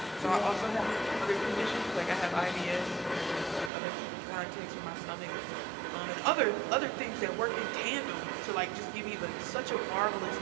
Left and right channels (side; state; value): left; drops out; at 3.7 s